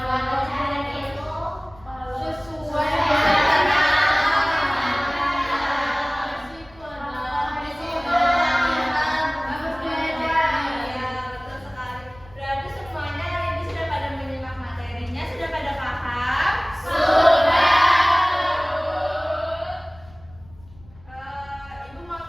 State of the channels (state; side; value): noise; left; rumble, 24 dB below the sound